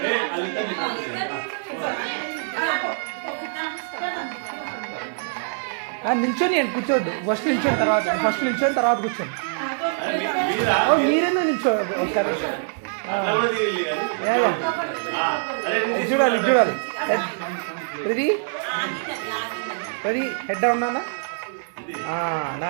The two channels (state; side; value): silent; left; digital silence